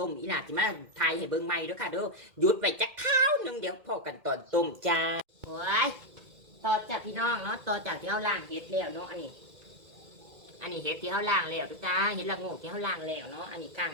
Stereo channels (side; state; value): left; late; 2.1 ms